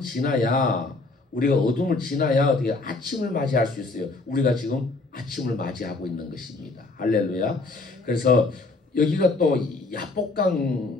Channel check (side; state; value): right; quieter; 3.5 dB